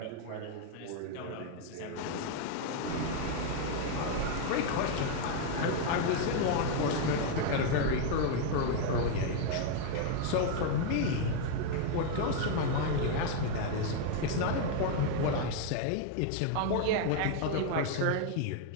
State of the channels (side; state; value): both; different; correlation 0.01